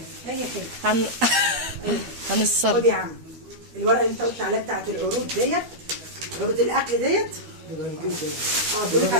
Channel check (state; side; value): late; left; 13 ms